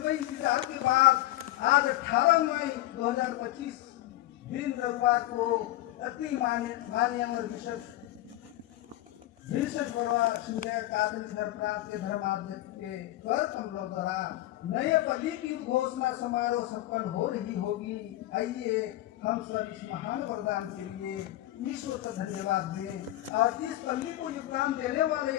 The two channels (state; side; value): quieter; right; 15.7 dB